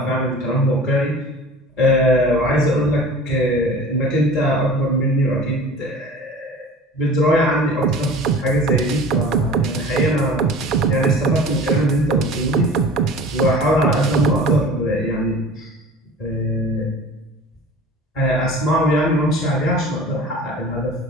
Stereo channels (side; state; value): both; normal; correlation 0.41